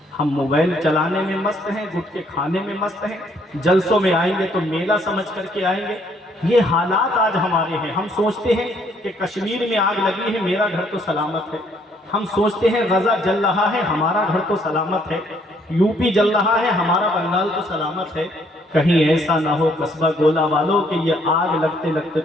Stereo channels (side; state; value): both; normal; correlation 0.66